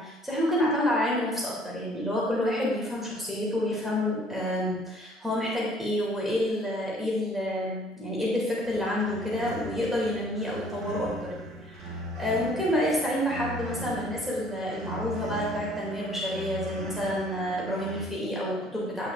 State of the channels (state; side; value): normal; both; correlation 0.58